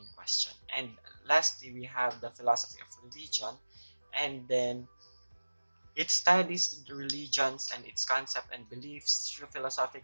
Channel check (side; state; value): both; inverted; correlation -1.00